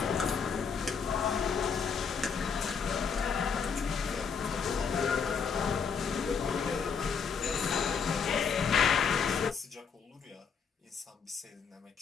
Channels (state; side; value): quieter; right; 6.1 dB